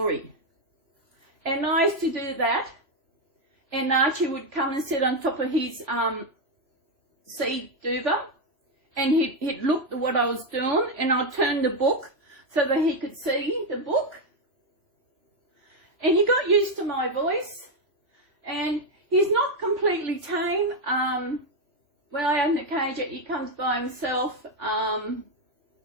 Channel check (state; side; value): late; left; 3.0 ms